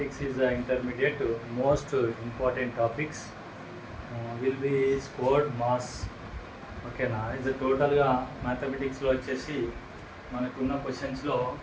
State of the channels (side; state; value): both; identical; correlation 1.00